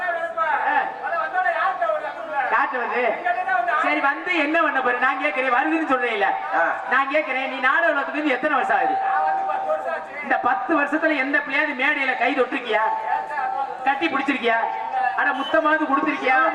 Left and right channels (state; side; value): identical; both; correlation 1.00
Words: காட்டுவது சரி, வந்து என்ன பண்ண போற? நான் கேட்கிறேன், வருதுன்னு சொல்றேன் இல்ல, நான் கேட்கிறேன், நீ நாடக உலகத்துக்கு எத்தனை வருஷம் ஆகுது? இந்த 10 வருஷத்துல எந்த பிள்ளையாவது மேடையில கை தொட்டிருக்கியா, கட்டி பிடிச்சிருக்கியா, ஆனா முத்தமாவது கொடுத்திருக்கியா?